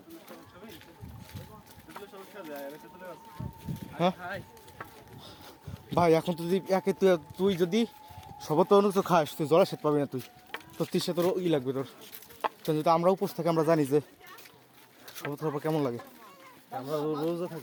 হ্যাঁ খাই ভাই এখন তো যদি তুই যদি সবত অন্য কিছু খাস, তুই জলে সেট পাবি না। তুই তোর তৃষ্ণা তোর লাগবে তোর। যদি আমরা উপোস থাকি আমরা জানি যে শপথ করার পর কেমন লাগে? আমরা রোজা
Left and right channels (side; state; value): both; identical; correlation 1.00